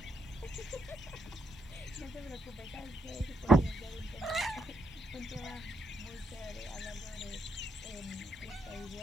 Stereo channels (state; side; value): normal; both; correlation 0.77